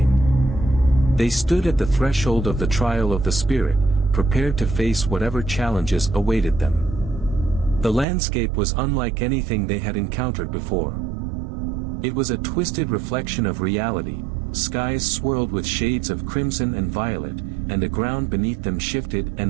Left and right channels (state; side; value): drops out; left; at 8.1 s